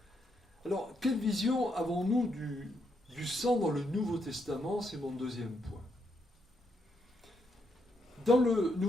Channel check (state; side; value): normal; both; correlation 0.78